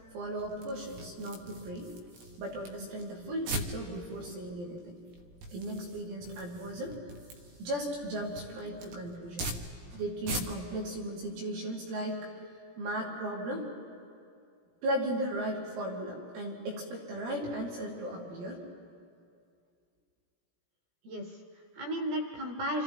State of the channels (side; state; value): left; late; 17 ms